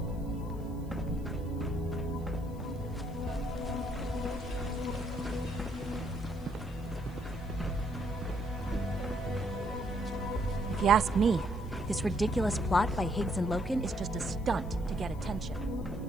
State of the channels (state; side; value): noise; left; hiss, 26 dB below the sound